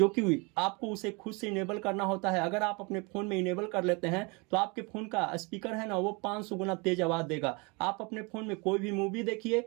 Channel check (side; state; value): left; quieter; 29.1 dB